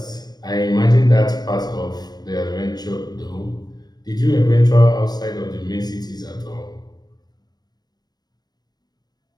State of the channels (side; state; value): right; late; 0.19 ms